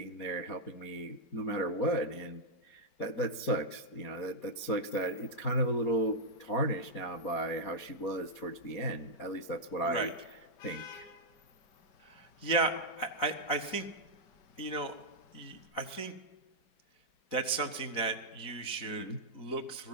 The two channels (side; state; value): right; late; 4.1 ms